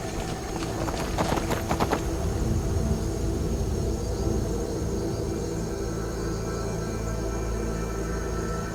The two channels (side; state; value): both; identical; correlation 1.00